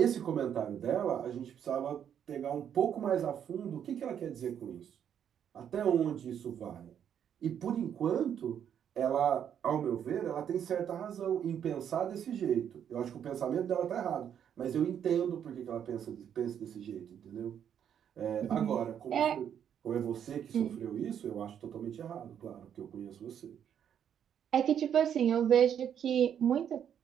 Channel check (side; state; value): left; quieter; 8.9 dB